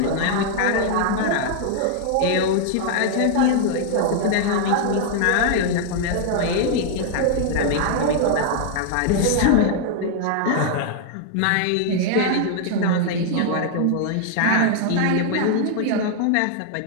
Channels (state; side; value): different; both; correlation 0.00